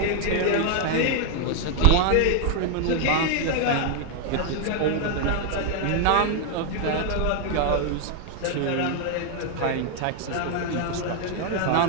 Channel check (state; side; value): different; both; correlation 0.00